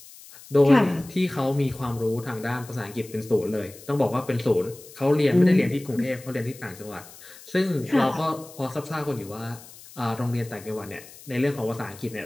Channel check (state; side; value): noise; left; hiss, 19 dB below the sound